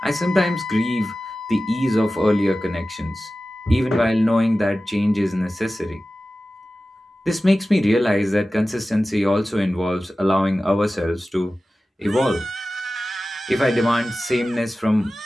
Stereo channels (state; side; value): normal; both; correlation 0.95